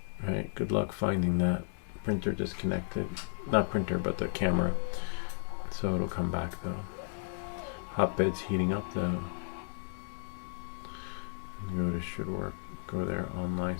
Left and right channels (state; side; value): silent; right; 55 dB below the other